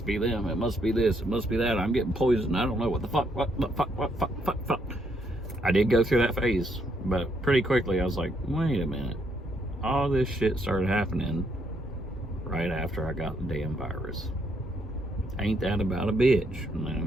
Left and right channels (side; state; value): both; normal; correlation 0.73